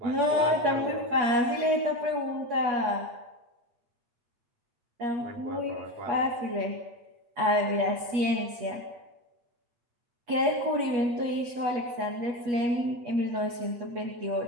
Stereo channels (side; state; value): left; late; 8.3 ms